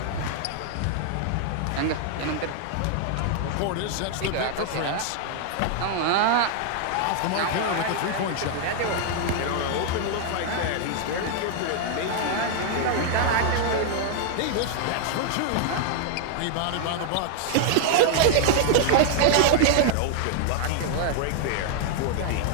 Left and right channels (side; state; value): both; different; correlation 0.00